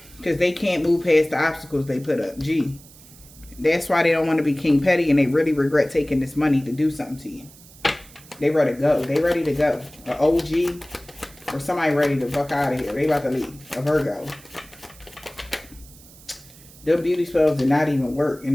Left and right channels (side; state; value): right; noise; hiss, 22 dB below the sound